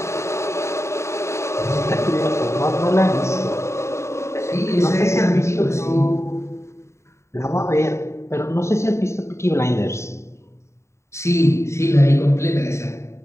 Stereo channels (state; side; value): late; right; 0.14 ms